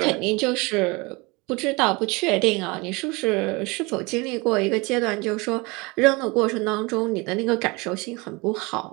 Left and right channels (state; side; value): quieter; left; 26.0 dB